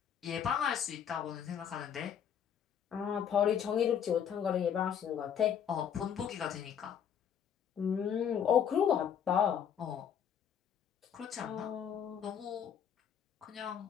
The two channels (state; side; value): quieter; right; 8.4 dB